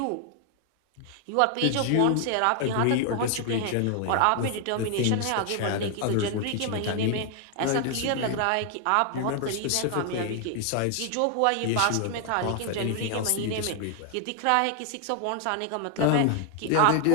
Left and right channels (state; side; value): different; both; correlation 0.00